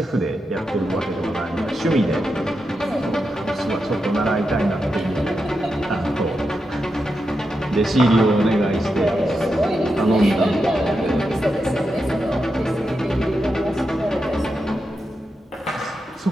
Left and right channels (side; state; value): both; normal; correlation 0.87